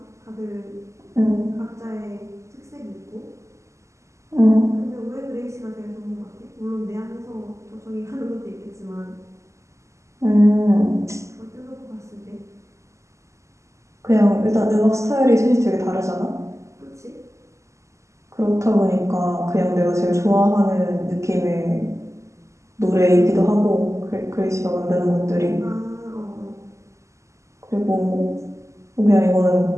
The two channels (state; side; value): late; left; 0.14 ms